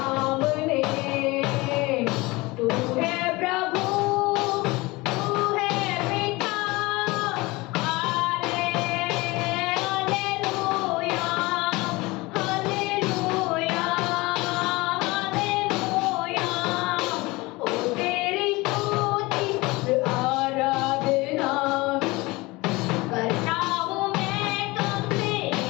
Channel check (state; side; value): quieter; right; 22.5 dB